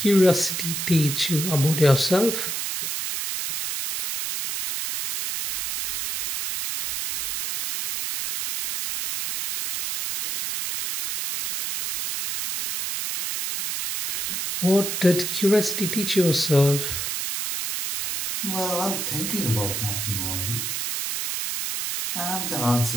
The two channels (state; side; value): noise; right; hiss, 2 dB below the sound